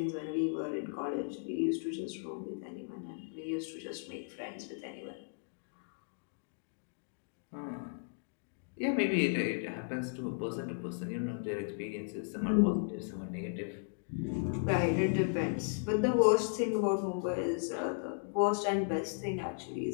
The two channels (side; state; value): right; silent; digital silence